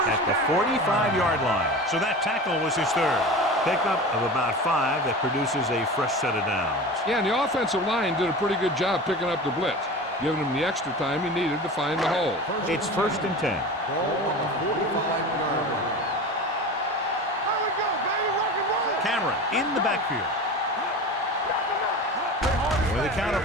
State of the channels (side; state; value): both; normal; correlation 0.32